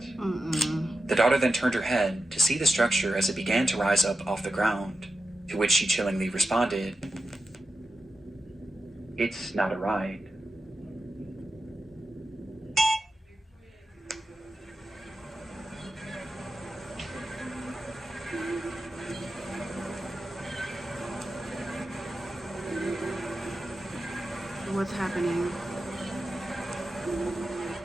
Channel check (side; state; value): both; normal; correlation 0.91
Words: The daughter then turned her head to see the structure as it began to rise up off the ground, to which she chillingly responded, "It's not a ride." What's happening?